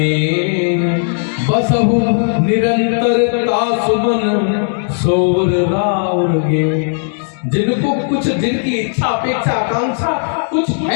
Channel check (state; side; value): silent; right; digital silence